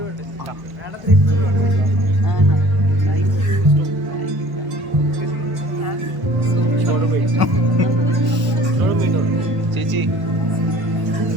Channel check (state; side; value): late; left; 1.1 ms